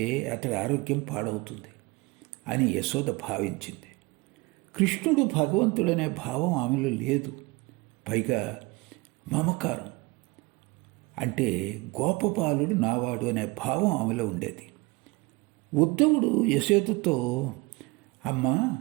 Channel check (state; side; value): quieter; left; 24.4 dB